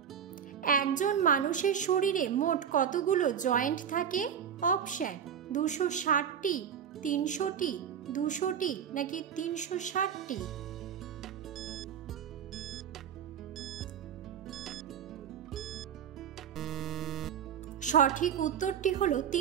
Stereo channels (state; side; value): quieter; left; 8.4 dB